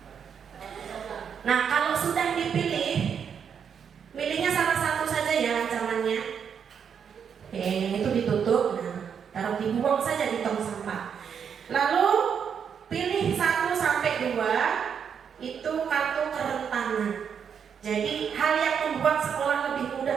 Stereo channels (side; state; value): left; quieter; 7.3 dB